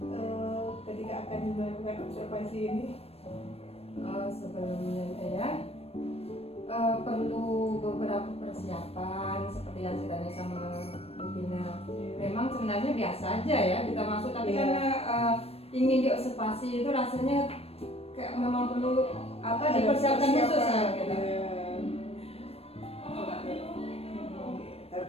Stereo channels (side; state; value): right; late; 0.29 ms